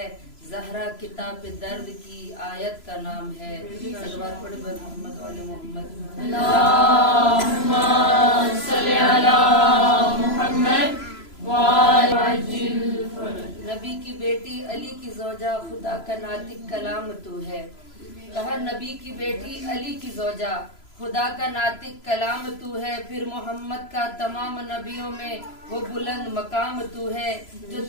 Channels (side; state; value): right; late; 3.0 ms